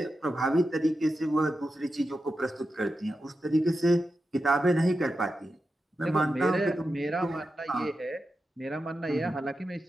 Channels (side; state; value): both; normal; correlation 0.90